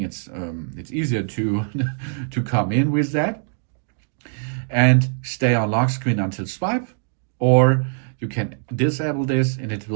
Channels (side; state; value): left; silent; 64 dB below the other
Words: it's easier to to come in with that. And stay on lock screen until swipe, or you can disable this and it